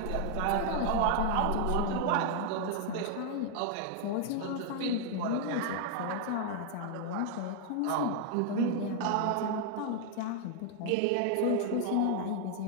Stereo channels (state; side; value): different; both; correlation 0.00